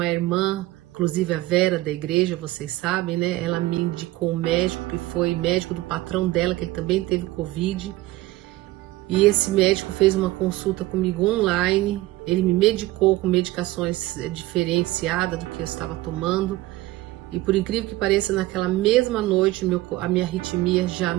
irmã, inclusive a Vera da igreja, vocês sabem, né? Ela me indicou um médico que foi médico do patrão dela, que ele também teve Covid. E esse médico fez uma consulta comigo online, ele me medicou com medicações diferenciadas do que eu estava tomando. E por incrível que pareça, naquela mesma noite a minha arritmia já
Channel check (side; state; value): left; quieter; 17.7 dB